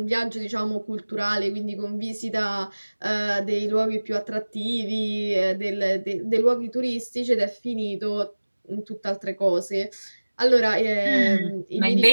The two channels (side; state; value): both; inverted; correlation -1.00